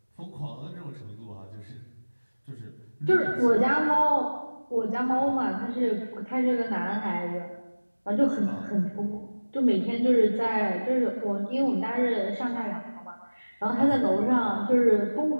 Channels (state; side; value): inverted; both; correlation -1.00